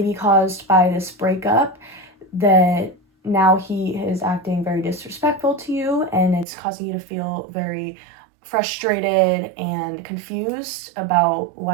caused by this breakup that now he is acting very disrespectful to you, and it's causing you to feel very frustrated and confused about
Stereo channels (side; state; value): left; drops out; at 6.5 s